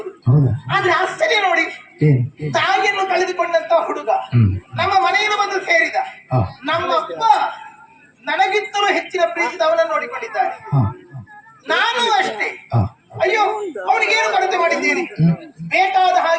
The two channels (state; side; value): identical; both; correlation 1.00